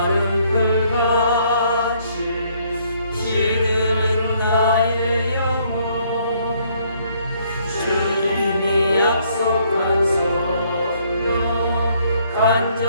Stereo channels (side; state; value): both; inverted; correlation -0.67